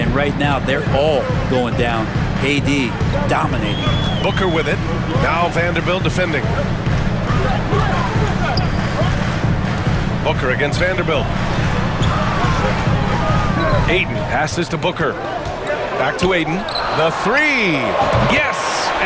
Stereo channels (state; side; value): identical; both; correlation 1.00